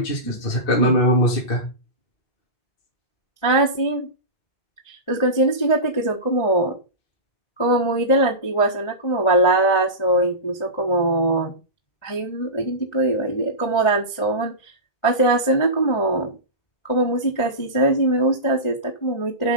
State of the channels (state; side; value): late; right; 1.3 ms